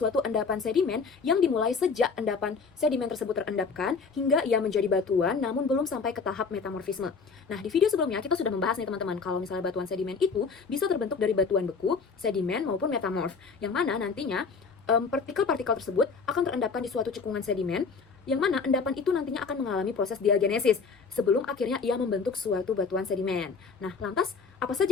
endapan sedimen yang dimulai sejak endapan sedimen tersebut terendapkan hingga ia menjadi batuan namun belum sampai ke tahap metamorfisme. Nah, di video sebelumnya kita sudah membahas nih teman-teman, kalau misalnya batuan sedimen itu bisa terbentuk dari batuan beku, sedimen, maupun metamorf, yang mana nantinya partikel-partikel tersebut akan terendapkan di suatu cekungan sedimen, yang mana endapan itu nantinya akan mengalami proses diagenesis sebelum akhirnya ia membentuk suatu batuan sedimen. Nah, lantas apa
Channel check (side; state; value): right; quieter; 5.0 dB